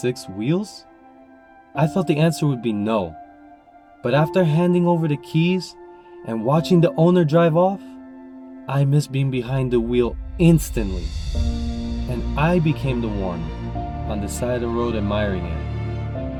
wheels? I thought the answer would be no. But after handing over the keys and watching the owner drive off, I miss being behind the wheel instantly. And I became the one on the side of the road admiring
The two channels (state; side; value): identical; both; correlation 1.00